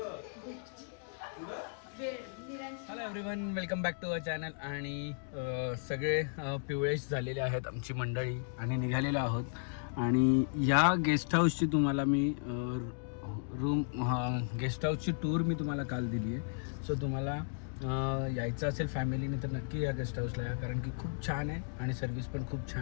hello everyone, welcome back to our channel. आणि सगळे पिवळेश झालेले आहेत आमची मंडळी आणि निघालेलो आहोत. आणि या गेस्ट हाऊसची तुम्हाला मी गेस्ट हाऊसची टूर मी तुम्हाला काल दिली आहे. सो तुम्हाला यायचं असेल फॅमिलीने तर नक्की या गेस्ट हाऊसला या, कारण की खूप छान आहे आणि सर्विस पण खूप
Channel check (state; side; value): silent; right; digital silence